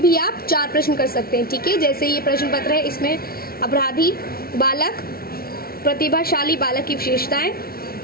आप 4 प्रश्न कर सकते हैं। ठीक है, जैसे ये प्रश्न पत्र है, इसमें अपराधी बालक, प्रतिभाशाली बालक की विशेषताएं,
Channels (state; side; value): late; right; 0.44 ms